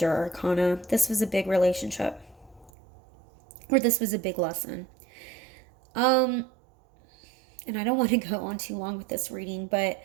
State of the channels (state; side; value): drops out; left; at 2.7 s